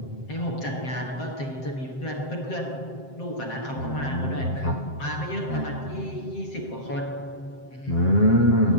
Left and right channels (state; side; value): late; right; 7.6 ms